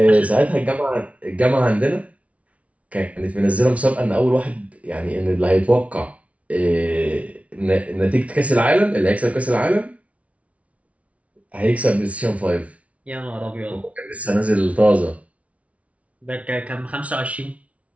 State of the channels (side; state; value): left; late; 0.065 ms